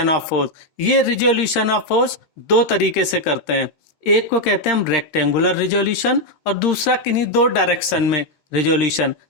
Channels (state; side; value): late; right; 13 ms